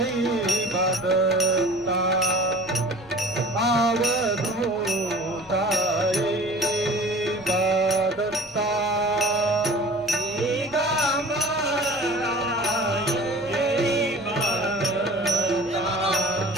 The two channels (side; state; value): right; noise; rumble, 29 dB below the sound